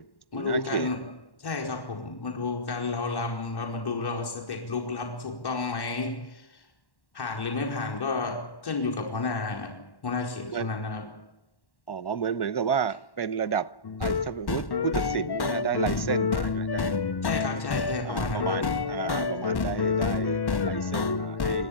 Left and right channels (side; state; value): right; late; 1.1 ms